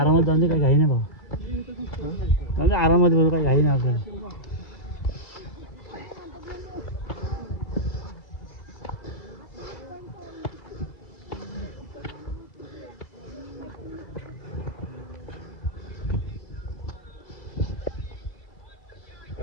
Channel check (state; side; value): late; right; 2.3 ms